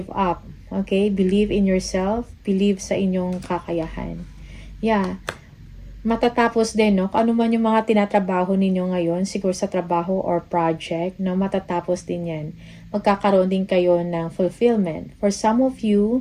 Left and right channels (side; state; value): both; identical; correlation 1.00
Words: up. Okay? Believe in yourself. Believe sa inyong kakayahan. Yeah. Matatapos din, no? Kung ano man yung mga tinatrabaho ninyo ngayon, siguro sa trabaho or project, no? Matatapos din yan. Magkakaroon din kayo ng fulfillment. For some of